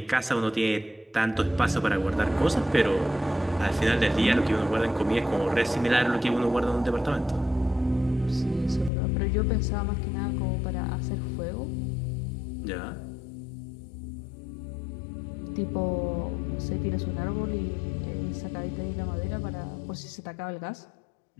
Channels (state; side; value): drops out; right; at 8.9 s